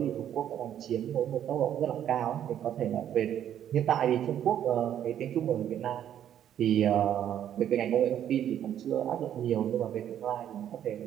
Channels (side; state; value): left; quieter; 10.3 dB